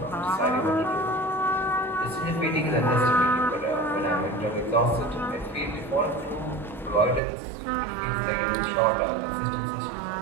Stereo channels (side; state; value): left; drops out; at 7.2 s